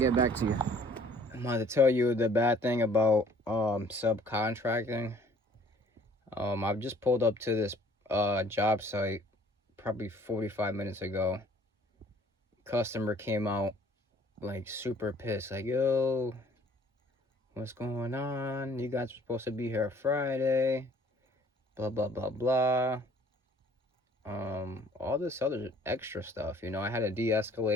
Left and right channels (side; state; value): both; normal; correlation 0.56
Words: back to you. I'm going to tell you the bad thing about subcontracting. I've just pulled up to this job site probably 45 minutes ago. Customer came out like super pissed, like, yo, what's going on? You guys were supposed to be here Friday, blah blah blah blah. All this other extra stuff, you know. I had to